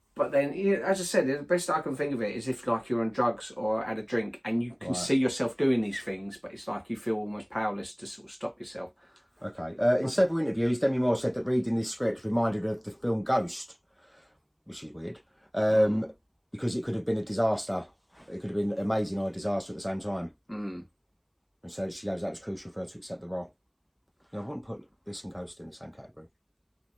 But then, as I said, the best I can think of it is if like you're on drugs or had a drink and you can see yourself doing these things, but it's like you feel almost powerless to sort of stop yourself. Okay. In several interviews, Demi Moore said that reading this script reminded her of the film Ghost, which is weird, because it could have been a disaster. It could have been amazing or a disaster at the same time. And so she goes, that was crucial for her to accept the role. I wouldn't put this and Ghost in the same category.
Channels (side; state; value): both; identical; correlation 1.00